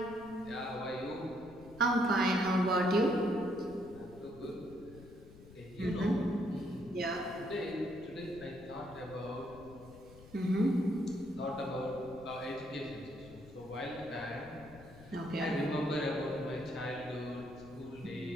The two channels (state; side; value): noise; left; rumble, 19 dB below the sound